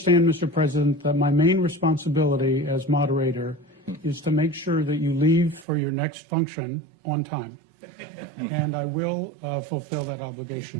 Mr. President, that my main responsibility as moderator is to make sure that you leave for your next function on time. And I will fulfill that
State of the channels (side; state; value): left; drops out; at 5.7 s